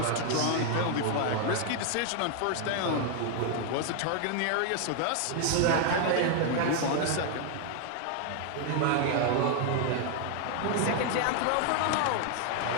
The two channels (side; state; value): both; different; correlation 0.00